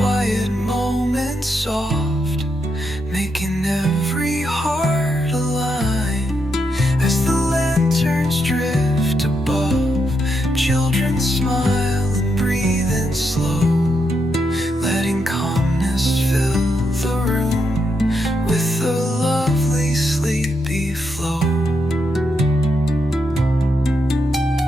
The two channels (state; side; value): normal; both; correlation 0.82